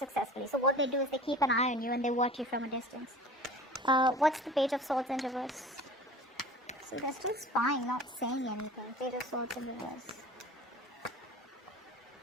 So what they do is they keep an eye on you and they watch you from a distance. What's the Page of Swords in reverse? So they're still spying, not saying anything. Page of Swords in reverse.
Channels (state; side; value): normal; both; correlation 0.40